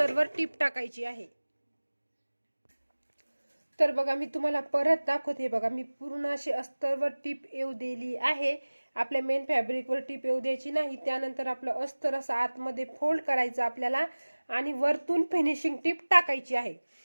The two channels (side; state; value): both; inverted; correlation -1.00